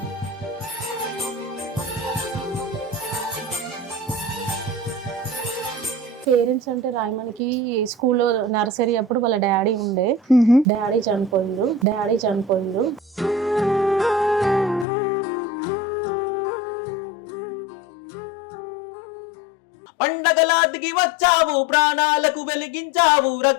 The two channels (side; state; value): right; drops out; at 14.9 s